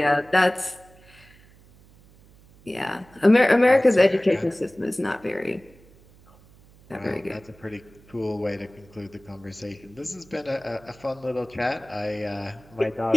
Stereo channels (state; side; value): noise; right; hum, 26 dB below the sound